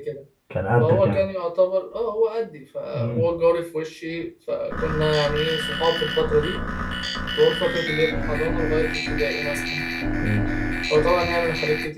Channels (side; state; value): both; identical; correlation 1.00